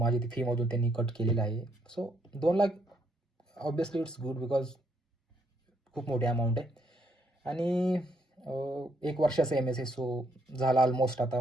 ती फीमधून त्यांनी कट केलेलं आहे. So 2 lakh obviously it's good, because खूप मोठी अमाऊंट आहे. आणि 1 वर्षाचं MS आहे. सो झाला ऑलमोस्ट. आता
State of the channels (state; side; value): normal; both; correlation 0.73